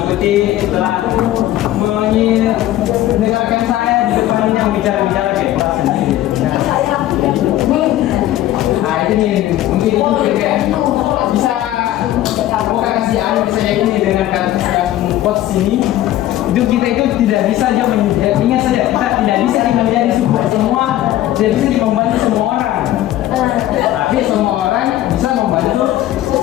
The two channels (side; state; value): right; quieter; 14.0 dB